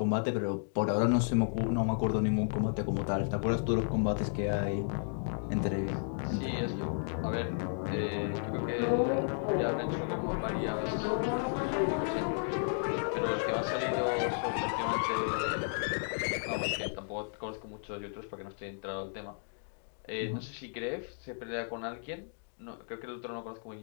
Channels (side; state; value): right; silent; digital silence